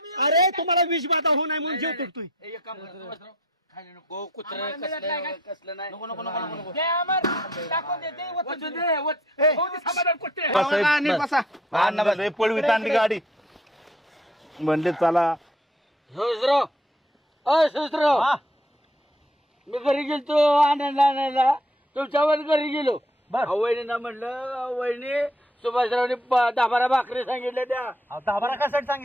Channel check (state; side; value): normal; both; correlation 0.61